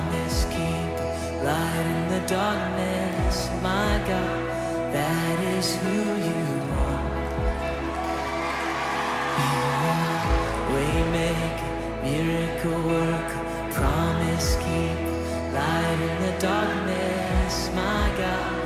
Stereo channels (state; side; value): identical; both; correlation 1.00